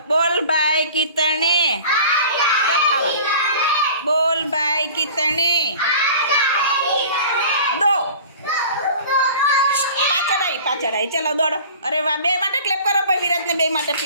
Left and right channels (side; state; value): both; inverted; correlation -0.42